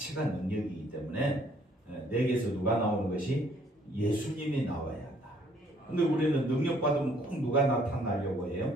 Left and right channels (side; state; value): both; normal; correlation 0.63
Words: 능력이기 때문에 내게서 누가 나오는 것이 예수님이 나와야 한다. 근데 우리는 능력 받으면 꼭 누가 나타나려고